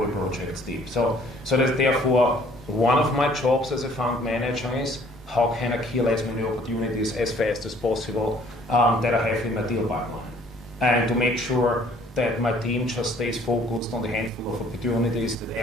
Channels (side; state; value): both; normal; correlation 0.58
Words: projects deep. So that therefore, one of my jobs as a fund manager is how can I kill as many opportunities as fast as possible that I have in my deal pipeline, and to make sure that my team just stays focused on the handful of opportunities that